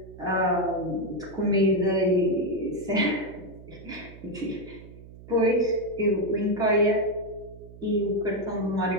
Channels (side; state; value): right; noise; hum, 18 dB below the sound